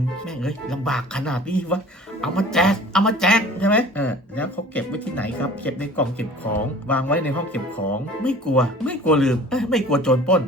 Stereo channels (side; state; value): both; normal; correlation 0.45